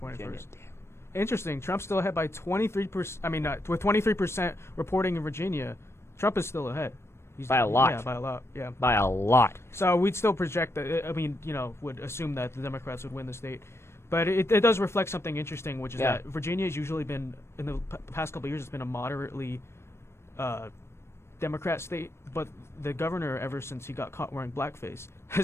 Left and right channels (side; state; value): right; late; 0.13 ms